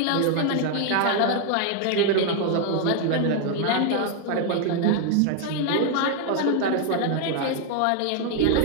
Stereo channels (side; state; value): both; different; correlation 0.00